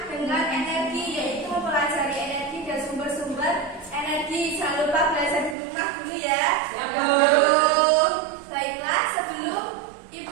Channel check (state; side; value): drops out; left; at 5.6 s